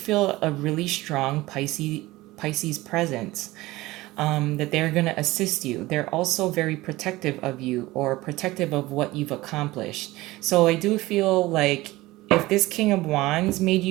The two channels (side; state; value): left; quieter; 19.0 dB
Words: a really strong Pisces presence. That they're going to assist you. They're also very protective of you, or protective of what you've accomplished. So I do feel like if this King of Wands made